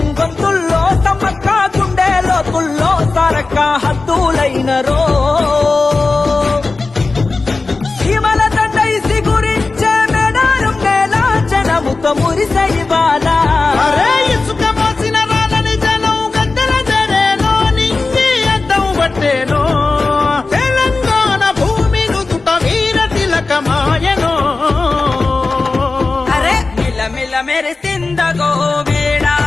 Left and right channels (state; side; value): quieter; right; 3.7 dB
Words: గొంతుల్లో సమ్మక్క గుండెలో తుల్లో సరక్క హద్దులైనరో సీమల దండైసి గురించే మేడారం నేల జనముతో మురిసై బాలా ఇసుక మోసిన రాలని జనం గద్దెల జరేనో నింగి అద్దం పట్టేనో తెలంగాణ భూమి నుదుట వీర తిలకమాయనో మెరిసిందగో